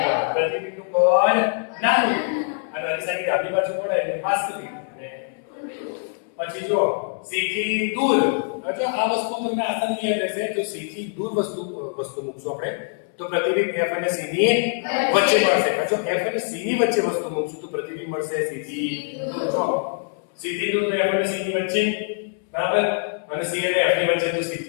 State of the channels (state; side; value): silent; right; 63 dB below the other